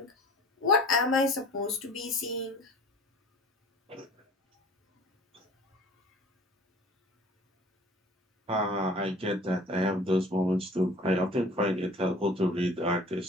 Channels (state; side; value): normal; both; correlation 0.47